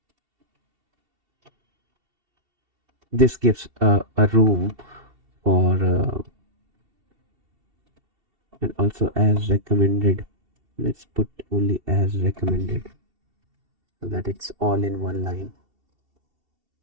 This gives a room for and also as recommended. Let's put only as recommended so that it's all in one line.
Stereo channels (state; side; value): late; left; 2.7 ms